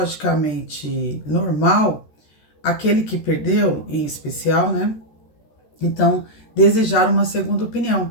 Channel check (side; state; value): right; late; 13 ms